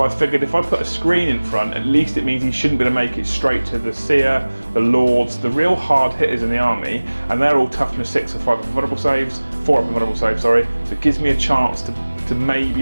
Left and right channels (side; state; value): both; inverted; correlation -1.00